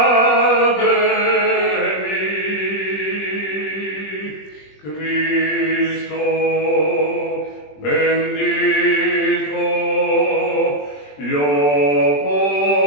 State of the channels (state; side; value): late; right; 20 ms